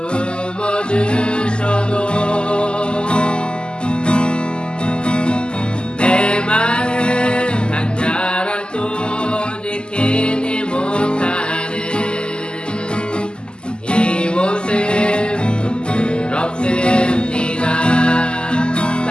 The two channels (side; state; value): right; late; 0.049 ms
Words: 품어주셔도 내 마음 한 자락도 지키지 못하는 이 모습 부끄럽습니다.